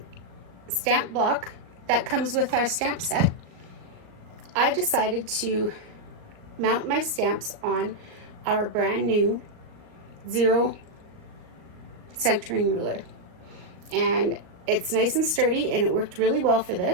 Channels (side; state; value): left; late; 38 ms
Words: stamp block that comes with our stamp set, I decided to mount my stamps on our brand new 0 centering ruler, and it's nice and sturdy and it worked really well for